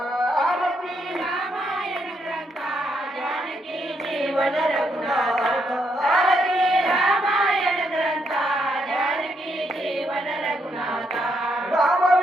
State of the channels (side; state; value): both; normal; correlation 0.76